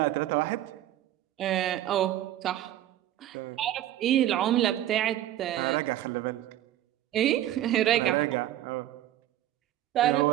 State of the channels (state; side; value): quieter; left; 13.1 dB